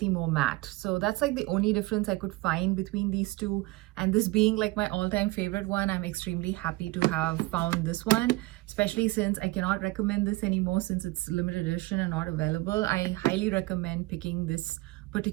more matte. So that's like the only difference I could find between these two. And this being like my all-time favorite one, I'm extremely happy to have found this one, especially since I cannot recommend this anymore since it's limited edition and not available. I highly recommend picking this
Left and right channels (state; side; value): quieter; left; 21.0 dB